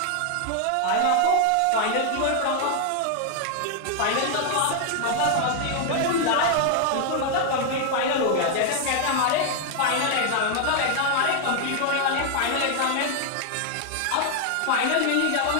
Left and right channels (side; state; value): both; different; correlation 0.00